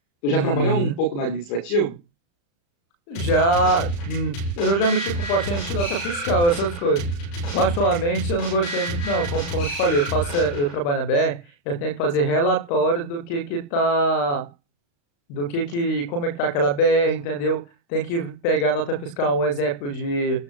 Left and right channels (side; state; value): right; late; 35 ms